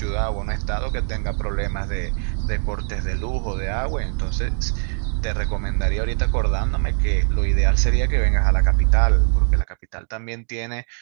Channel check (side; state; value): left; silent; digital silence